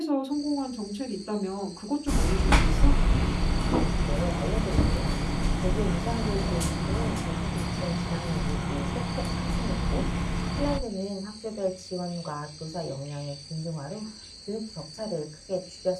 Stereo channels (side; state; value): both; identical; correlation 1.00